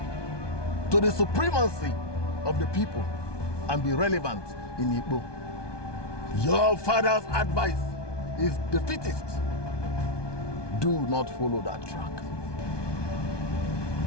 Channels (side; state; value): right; late; 1.2 ms